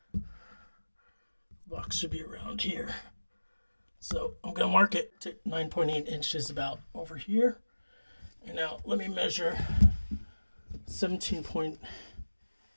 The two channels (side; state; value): both; inverted; correlation -1.00